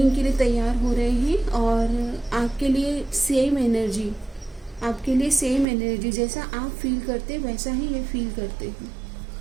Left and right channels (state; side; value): drops out; left; at 5.7 s